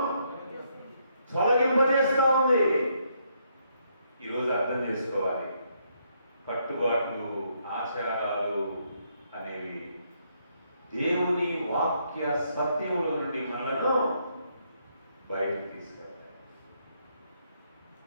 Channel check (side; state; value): both; inverted; correlation -0.74